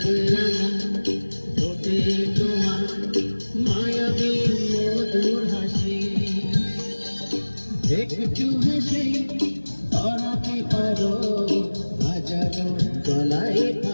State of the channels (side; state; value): both; inverted; correlation -1.00